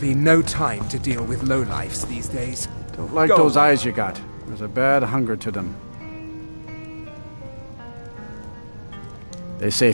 no time to deal with lowlifes these days. Don't like Go those on. eyes you got. There's a bad hunger to them. They say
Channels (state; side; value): inverted; both; correlation -1.00